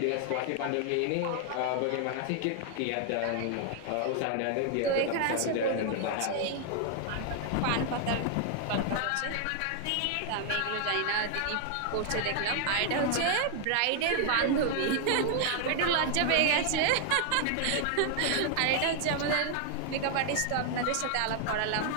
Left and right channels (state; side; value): different; both; correlation 0.00